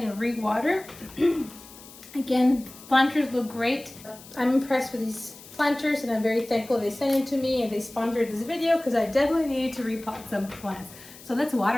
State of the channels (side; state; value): left; noise; hiss, 19 dB below the sound